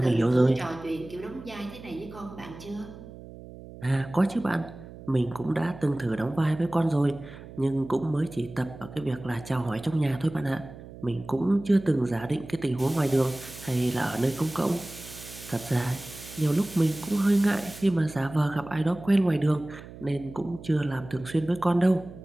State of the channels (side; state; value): right; noise; hum, 16 dB below the sound